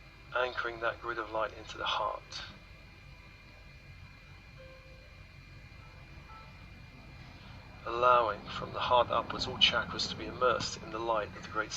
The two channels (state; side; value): identical; both; correlation 1.00